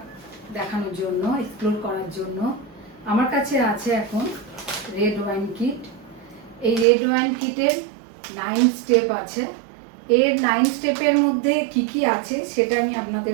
দেখানোর জন্য, এক্সপ্লোর করার জন্য। আমার কাছে আছে এখন রেড ওয়াইন কিট। এই রেড ওয়াইন কিটের 9 স্টেপ আছে। এর 9 স্টেপের মধ্যে কি কি আছে সেটা আমি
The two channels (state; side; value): drops out; left; at 6.9 s